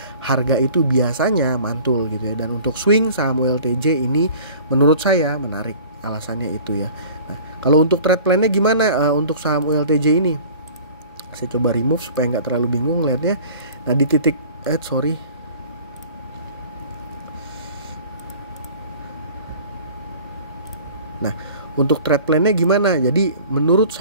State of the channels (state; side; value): inverted; both; correlation -0.46